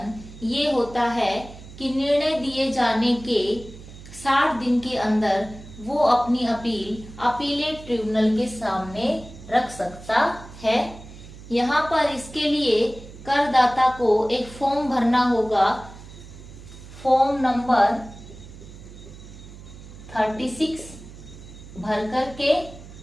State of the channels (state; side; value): noise; right; hum, 16 dB below the sound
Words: ये होता है कि निर्णय दिए जाने के 60 दिन के अंदर वो अपनी अपील अपीलेट ट्रिब्यूनल के सामने रख सकता है। यहाँ पर इसके लिए करदाता को एक फॉर्म भरना होगा, फॉर्म नंबर 36 भर करके